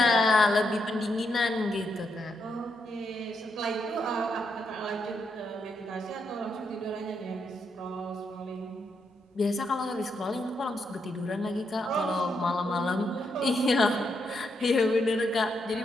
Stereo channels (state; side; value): normal; both; correlation 0.80